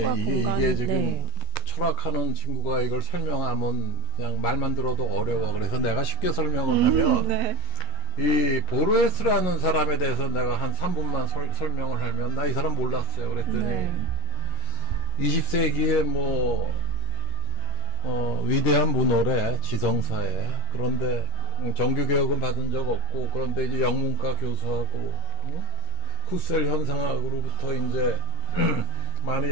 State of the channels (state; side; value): late; right; 11 ms